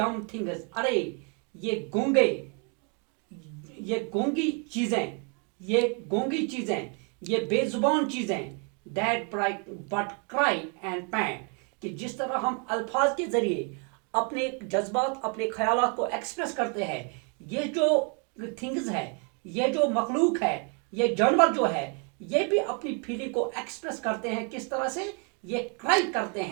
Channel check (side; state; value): left; quieter; 37.6 dB